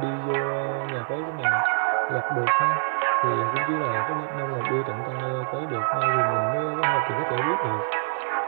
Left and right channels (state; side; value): silent; left; 55 dB below the other